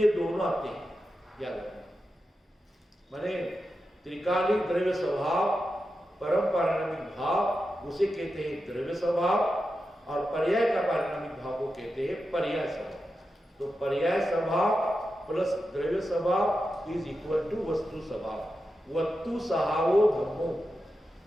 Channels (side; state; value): both; normal; correlation 0.90